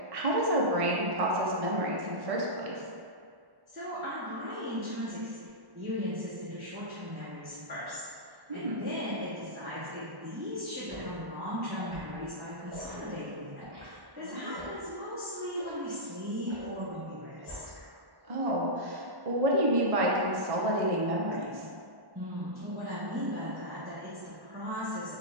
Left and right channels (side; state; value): left; late; 1.1 ms